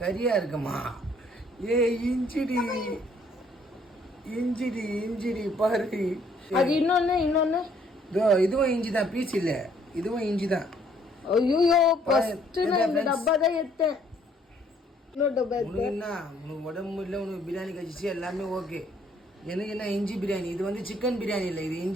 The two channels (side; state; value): both; normal; correlation 0.64